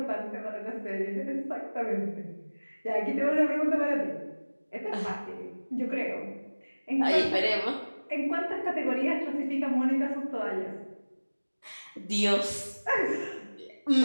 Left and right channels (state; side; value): inverted; both; correlation -1.00